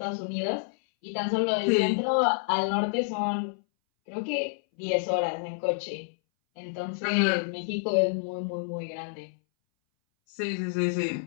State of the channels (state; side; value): silent; right; 59 dB below the other